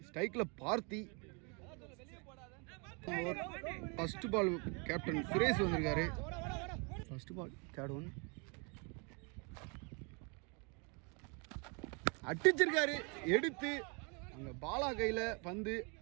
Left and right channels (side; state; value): left; quieter; 33.8 dB